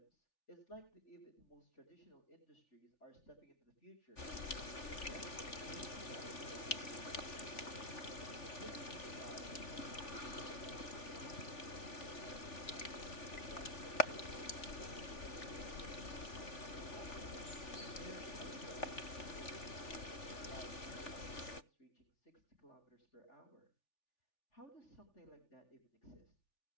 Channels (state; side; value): late; right; 3.4 ms